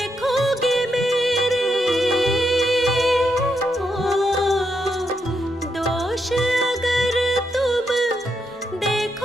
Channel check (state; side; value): normal; both; correlation 0.81